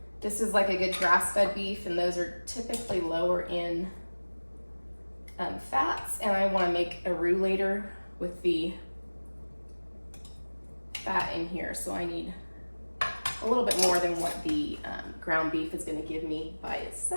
This is like a good grass-fed beef, and those are typically lower in fats, and I want to make a roux later with the fat in here, so I need a little bit more than what the ground beef is going to give me by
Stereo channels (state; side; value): inverted; both; correlation -1.00